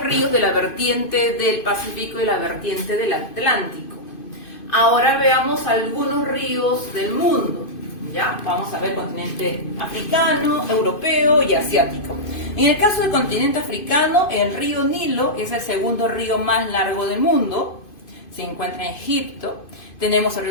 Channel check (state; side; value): late; right; 2.5 ms